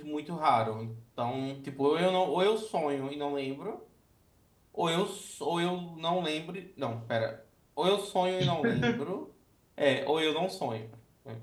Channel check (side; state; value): both; identical; correlation 1.00